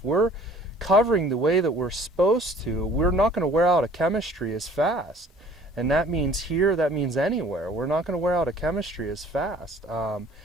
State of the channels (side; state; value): both; normal; correlation 0.52